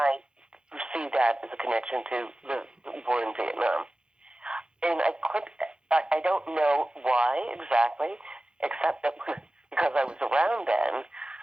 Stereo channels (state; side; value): late; left; 0.050 ms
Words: see that as a connection to the war in Vietnam. And I don't know why exactly, except that because I was around then,